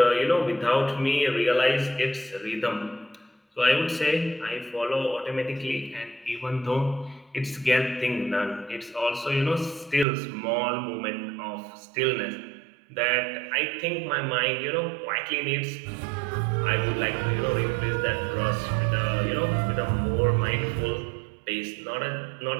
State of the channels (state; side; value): drops out; left; at 10.1 s